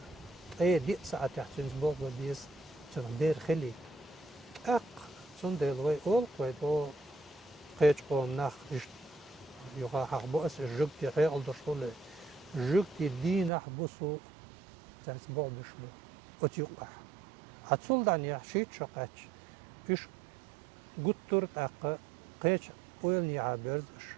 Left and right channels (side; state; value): left; drops out; at 13.5 s